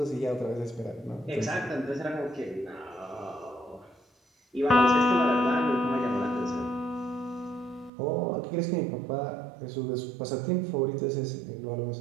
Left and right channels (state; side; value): drops out; left; at 7.9 s